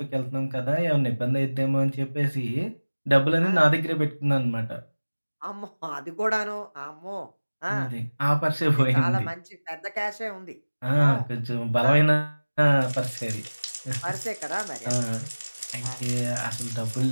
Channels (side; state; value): both; inverted; correlation -1.00